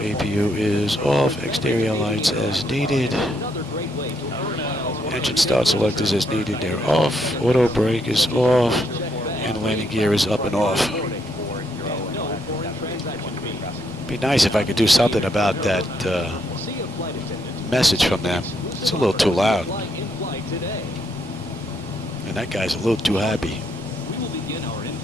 is off, exterior lights as needed. another great way to earn miles. Engine start selectors as needed, they're off, auto brake is off, and landing gear is up and off. No foreign transaction fees. Be nice if I could do something about that See a flight attendant. message from them. It's a little too loud, Fly in flight today. and that guy's a little too happy. We will begin our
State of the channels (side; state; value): both; normal; correlation 0.75